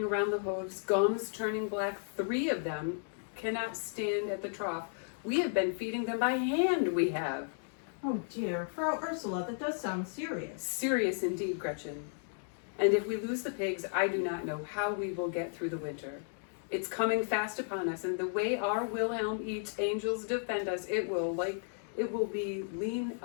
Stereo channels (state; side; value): silent; right; digital silence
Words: around the hooves, gums turning black. 3 of them cannot stand at the trough. We have been feeding them by hand, we have. Oh dear, Frau Ursula, that does sound serious. Serious indeed, Gretchen. And if we lose the pigs, I do not know how we will get through the winter. It's coming fast upon us, and the way our Wilhelm eats angels defend us, it will be